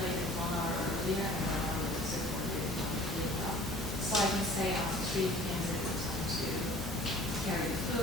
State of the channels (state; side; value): noise; left; hum, 8 dB below the sound